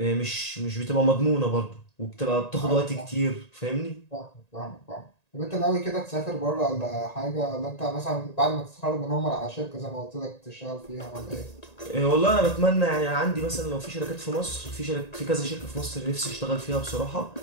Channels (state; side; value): late; right; 1.9 ms